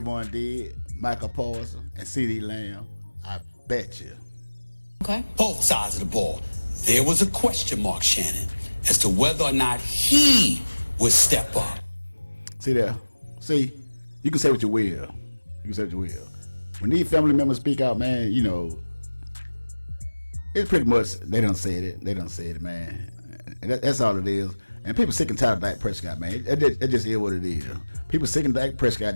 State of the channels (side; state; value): both; inverted; correlation -1.00